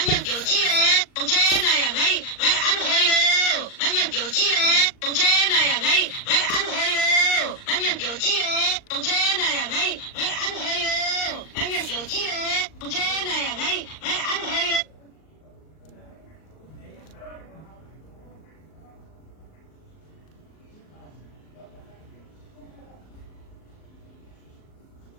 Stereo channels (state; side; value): late; right; 39 ms